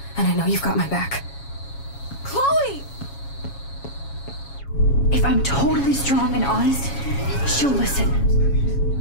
And I know you've got my back. Chloe! If I'm totally strong and honest, she'll listen.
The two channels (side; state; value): right; late; 7.2 ms